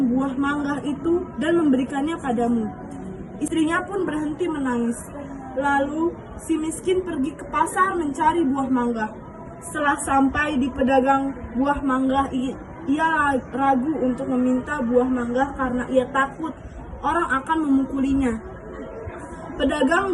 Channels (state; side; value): identical; both; correlation 1.00